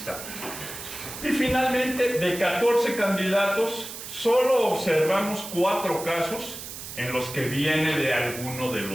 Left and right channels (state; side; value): noise; right; hiss, 10 dB below the sound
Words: Y finalmente, de 14 candidatos, solo observamos 4 casos en los que viene de alguno de